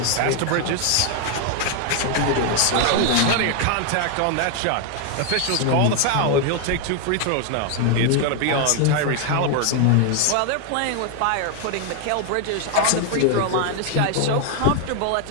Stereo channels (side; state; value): both; different; correlation 0.00